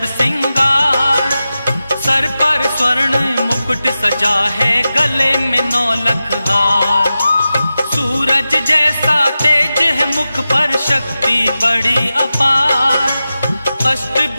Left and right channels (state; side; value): inverted; both; correlation -0.93